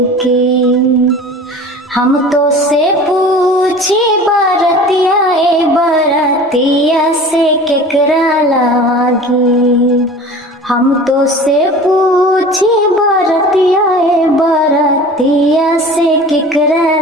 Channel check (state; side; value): normal; both; correlation 0.40